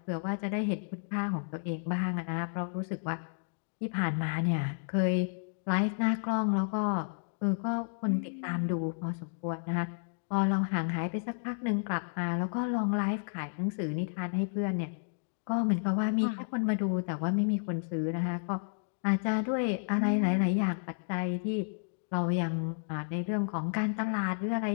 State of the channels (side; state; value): right; silent; digital silence